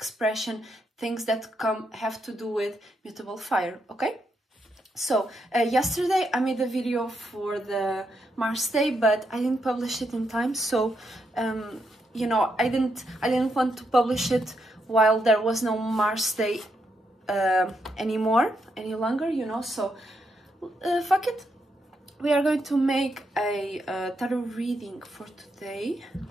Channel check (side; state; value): both; normal; correlation 0.80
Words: things that have to do with mutable fire. Okay, so yesterday I made a video for the Mars Day, but I didn't publish it in time. So you know, I didn't want to publish it while there was no Mars Day any longer, you know, so fuck it. We are going to make a tarot reading for today.